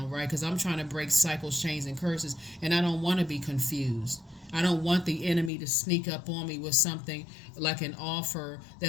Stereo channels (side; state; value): right; drops out; at 5.5 s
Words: right? Because I'm trying to break cycles, chains, and curses, and I don't want to be confused. I don't want the enemy to sneak up on me with something like an offer